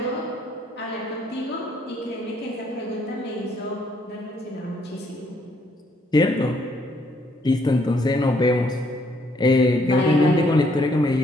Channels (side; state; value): both; normal; correlation 0.69